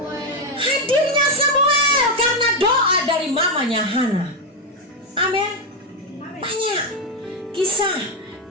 Hadirnya Samuel karena doa dari mamanya Hana. Amin. Banyak kisah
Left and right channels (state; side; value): normal; both; correlation 0.06